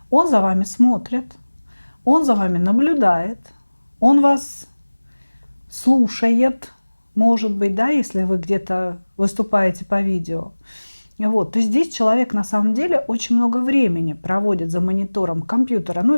он за вами смотрит, он за вами наблюдает, он вас слушает, может быть, да, если вы где-то выступаете по видео. Вот, то есть здесь человек на самом деле очень много времени проводит за монитором компьютера,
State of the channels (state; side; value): inverted; both; correlation -1.00